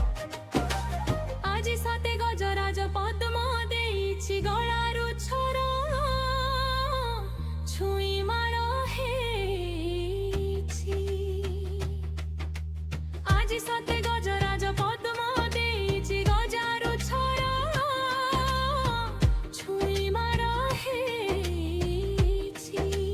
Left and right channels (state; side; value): identical; both; correlation 1.00